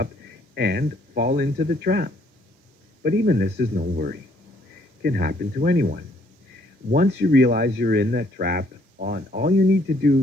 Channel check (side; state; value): both; normal; correlation 0.65